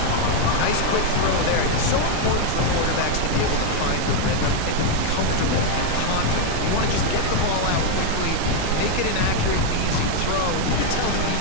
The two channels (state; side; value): different; both; correlation 0.01